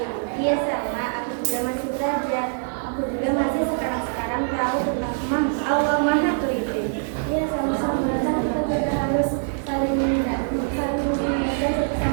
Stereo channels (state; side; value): silent; left; digital silence